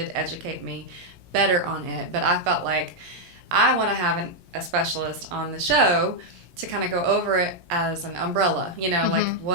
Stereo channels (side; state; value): left; late; 17 ms